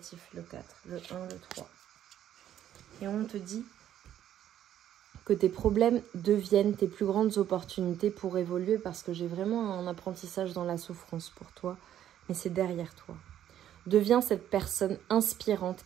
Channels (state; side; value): quieter; left; 11.0 dB